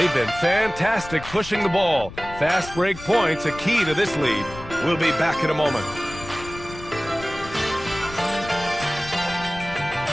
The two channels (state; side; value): noise; left; rumble, 14 dB below the sound